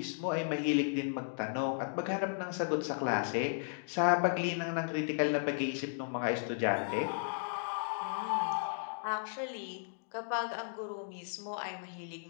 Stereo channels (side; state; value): right; silent; digital silence